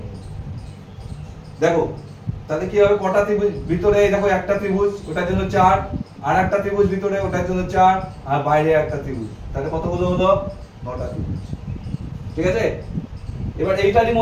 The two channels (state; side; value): identical; both; correlation 1.00